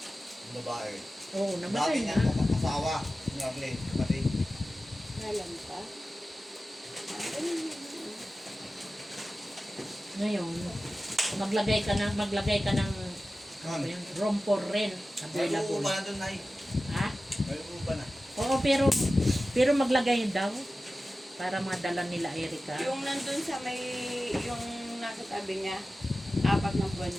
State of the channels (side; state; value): both; normal; correlation 0.95